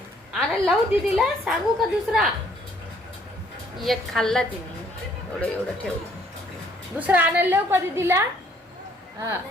आणायला लावू दीदीला, सांगू का दुसरा? एक खाल्ला तिने, एवढं ठेवलं. दुसरा आणायला लावू का दीदीला? हा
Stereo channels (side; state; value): both; normal; correlation 0.63